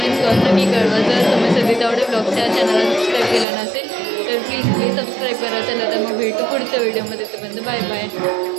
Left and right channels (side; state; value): left; drops out; at 3.5 s